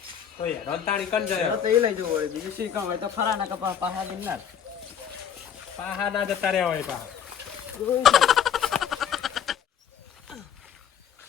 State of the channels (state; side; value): quieter; right; 8.5 dB